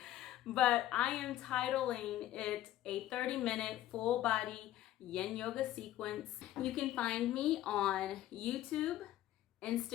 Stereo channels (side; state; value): right; quieter; 13.8 dB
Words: but I am titling it a 30-minute full body yin yoga sequence. You can find me on YouTube,